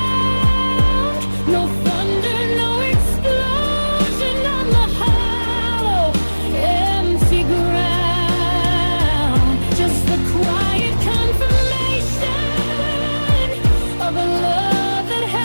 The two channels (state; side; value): inverted; both; correlation -1.00